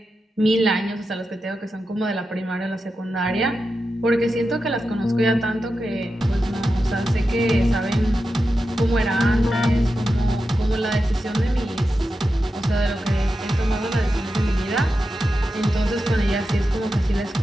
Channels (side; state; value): both; normal; correlation 0.90